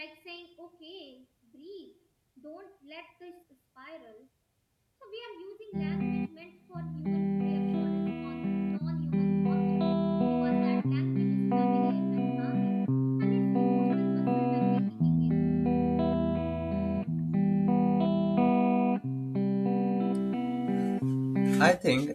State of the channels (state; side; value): identical; both; correlation 1.00